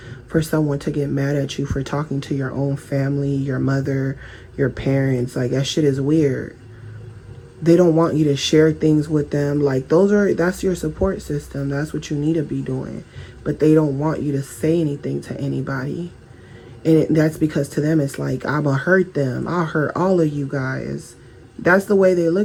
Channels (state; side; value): identical; both; correlation 1.00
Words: for someone to get mad at you for talking to your own family, your mother, your parents. Like, that shit is weird. They don't want you to share things with them. Like, that's your support system. That's what you need to be doing. But they don't want you to say anything to anybody. And that's because to them, it's like, I'm going to hurt them. I'll hurt all of you guys. That's the way they